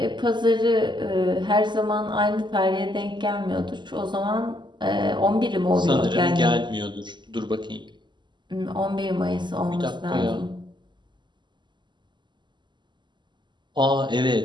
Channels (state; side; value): late; left; 0.22 ms